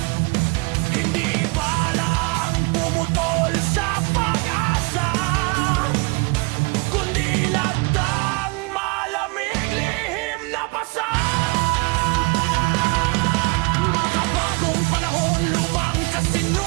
Hindi balang pumutol sa pag-asa, kundi labdang malamig, lihim na pasa. Makabagong panahon, lumang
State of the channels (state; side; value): quieter; left; 28.2 dB